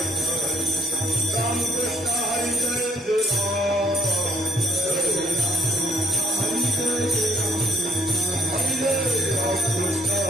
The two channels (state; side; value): normal; both; correlation 0.66